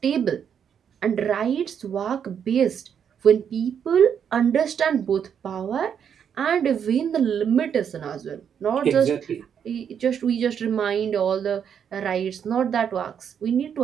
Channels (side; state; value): left; quieter; 8.0 dB